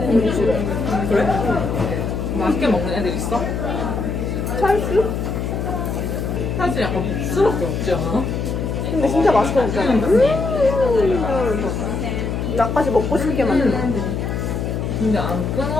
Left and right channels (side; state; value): left; noise; hum, 2 dB below the sound